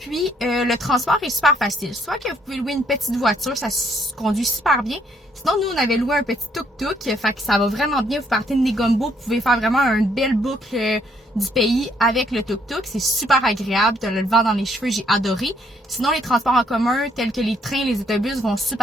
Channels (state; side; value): normal; both; correlation 0.69